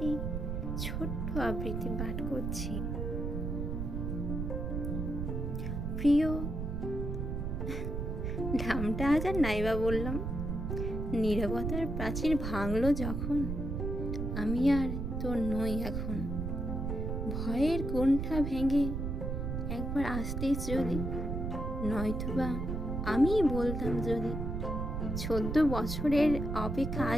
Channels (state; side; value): noise; right; rumble, 3 dB below the sound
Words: ছোট্ট আবৃত্তি পাঠ করছি। প্রিয়, নামটা আজ আর নাইবা বললাম। নীরবতার প্রাচীর ভাঙলো যখন, আমি আর তোর নই এখন। ভয়ের কোণঠা ভেঙে একবার আসতিস যদি, নয়তোবা আমি বলতাম যদি 14 বছরের অপেক্ষা